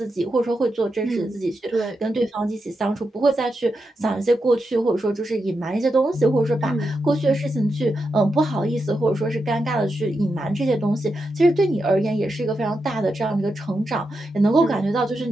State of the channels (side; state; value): both; normal; correlation 0.87